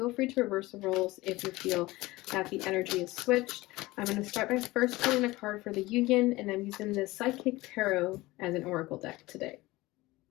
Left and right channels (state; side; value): quieter; right; 19.8 dB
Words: free to reverse the roles if you feel that the energy is switched. I'm going to start by first pulling a card for the union, and I'm using the Psychic Tarot as an oracle deck today.